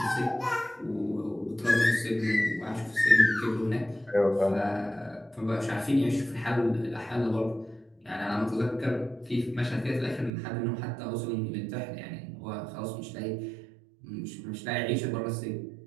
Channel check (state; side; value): drops out; left; at 10.3 s